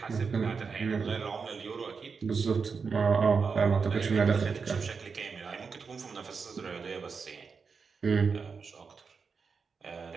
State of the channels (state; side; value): quieter; left; 5.3 dB